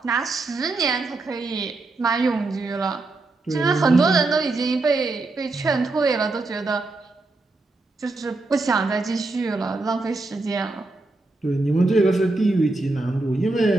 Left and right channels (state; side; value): quieter; left; 3.2 dB